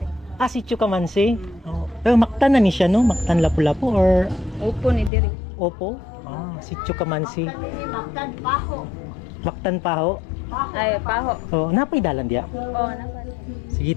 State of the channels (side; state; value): right; drops out; at 5.1 s